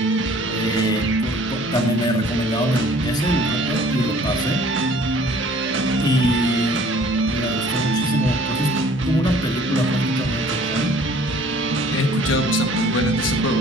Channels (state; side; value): normal; both; correlation 0.53